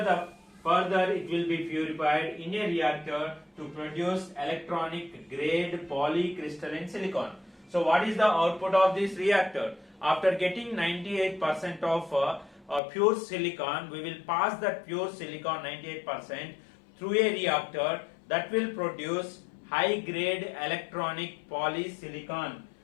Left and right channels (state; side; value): drops out; right; at 12.8 s